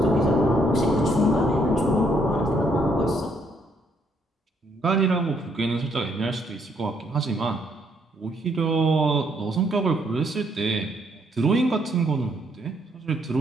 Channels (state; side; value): normal; both; correlation 0.71